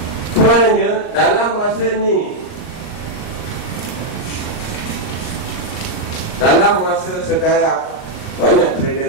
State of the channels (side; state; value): right; late; 38 ms